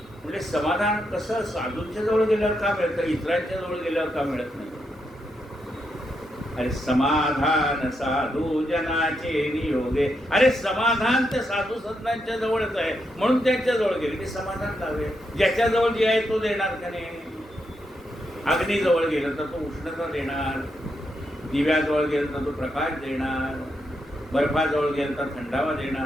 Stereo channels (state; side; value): normal; both; correlation 0.82